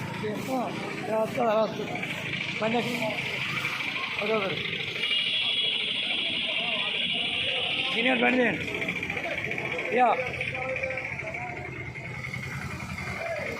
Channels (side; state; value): both; identical; correlation 1.00